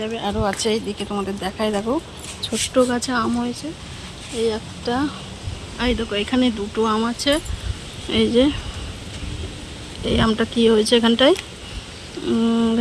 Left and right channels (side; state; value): both; identical; correlation 1.00